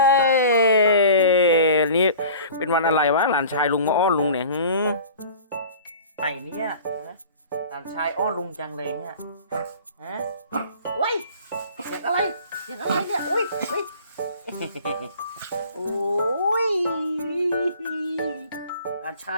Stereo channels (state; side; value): inverted; both; correlation -0.44